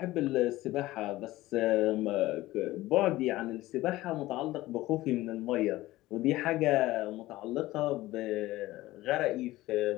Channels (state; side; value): quieter; right; 17.3 dB